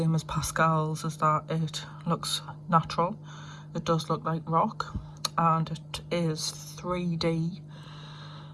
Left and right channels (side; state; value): both; identical; correlation 1.00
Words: as Pascal's, is that it looks natural. It does look like rock, and it is 3D